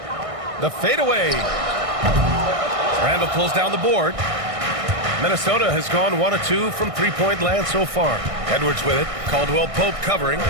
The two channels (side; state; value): left; late; 1.6 ms